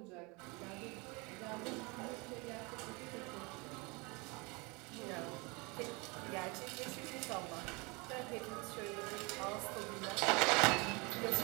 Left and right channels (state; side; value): quieter; left; 27.8 dB